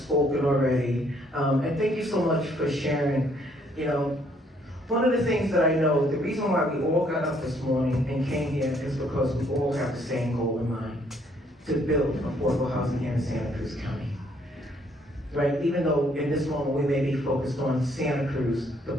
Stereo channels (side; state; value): both; normal; correlation 0.67